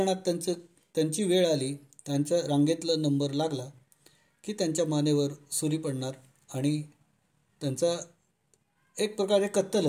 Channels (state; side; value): identical; both; correlation 1.00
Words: त्यांची वेळ आली, त्यांच्या रांगेतला नंबर लागला की त्यांच्या मानेवर सुरी पडणार आणि त्यांचा एक प्रकारे कत्तल